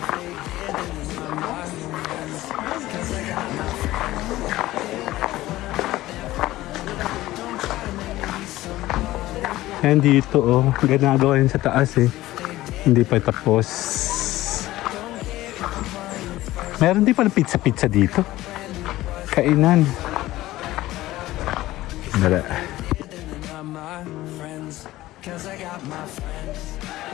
Yan dito, oh. Ginagawa yun sa taas, eh. Hindi pa tapos. Meron din pala pizza-pizza dito. Kainan. Dala. Cause I got my friends.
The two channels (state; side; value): quieter; right; 16.5 dB